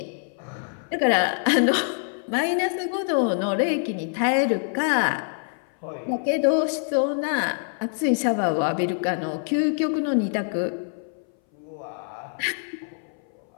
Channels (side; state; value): right; silent; 59 dB below the other